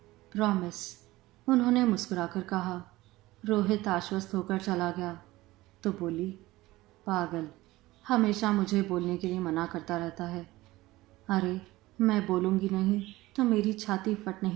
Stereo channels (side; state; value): left; quieter; 18.4 dB